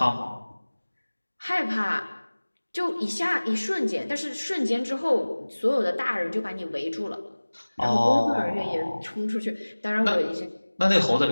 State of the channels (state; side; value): inverted; both; correlation -1.00